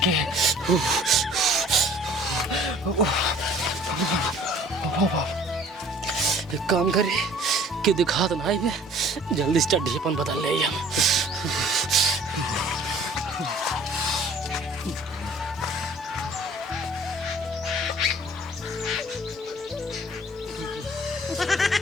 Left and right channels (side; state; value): both; normal; correlation 0.52